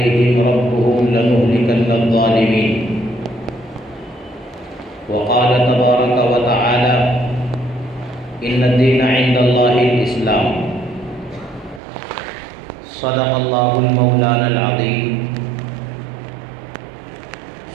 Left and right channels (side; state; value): left; drops out; at 11.8 s